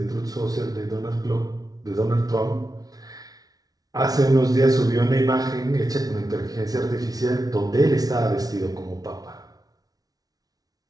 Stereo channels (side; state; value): left; late; 0.18 ms